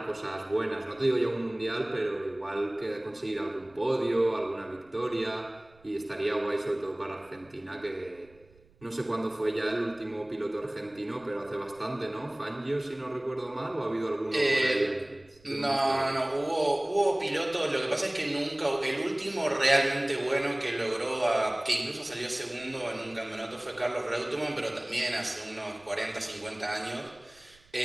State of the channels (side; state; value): right; noise; rumble, 29 dB below the sound